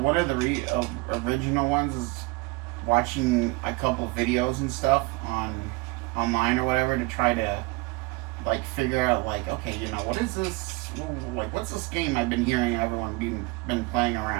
of the original ones is watching a couple videos and stuff online or whatever to try to like figure out like, okay, what is this? Like, what's this game I've been hearing everyone been playing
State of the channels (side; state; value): left; quieter; 24.1 dB